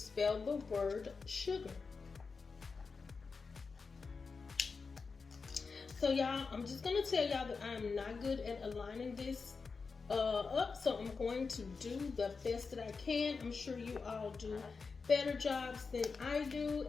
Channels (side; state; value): right; quieter; 4.8 dB